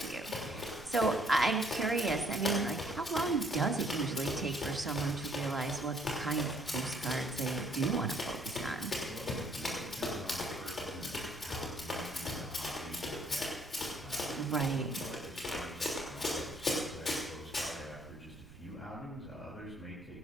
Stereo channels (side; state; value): right; noise; rumble, 19 dB below the sound